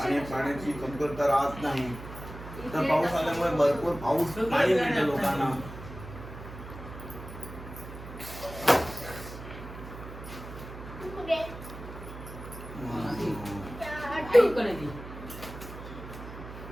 आणि पाण्याची कमतरता राहत नाही. तर पाऊस आल्यामुळे भरपूर पाऊस पाणी मिळतं लोकांना.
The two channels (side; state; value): right; noise; hum, 12 dB below the sound